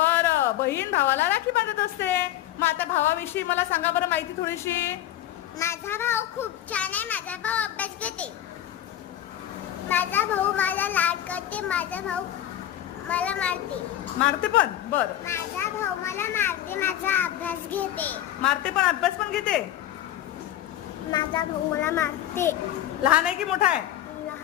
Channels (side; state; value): right; quieter; 12.4 dB